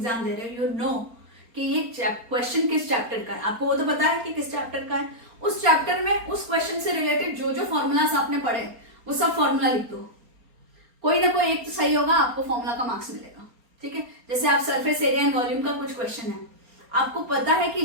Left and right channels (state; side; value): late; left; 4.3 ms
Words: दे रहे हो, यू नो कि ये क्वेश्चन किस चैप्टर का है, आपको वो तो पता है कि किस चैप्टर का है। उस चैप्टर में उस क्वेश्चन से रिलेटेड जो जो फॉर्मूलास आपने पढ़े वो सब फॉर्मूला लिख दो, कोई ना कोई एक तो सही होगा, आपको फॉर्मूला का मार्क्स मिलेगा, ठीक है। जैसे आप सरफेस एरिया एंड वॉल्यूम का कुछ क्वेश्चन है, आपको पता है कि